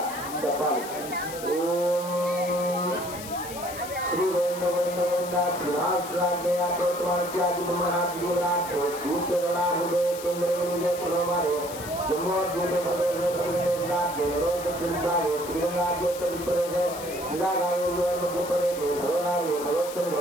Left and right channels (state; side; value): noise; left; hiss, 12 dB below the sound